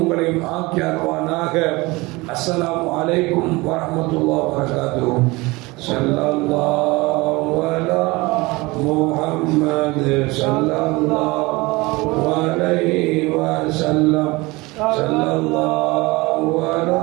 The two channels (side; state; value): left; quieter; 22.9 dB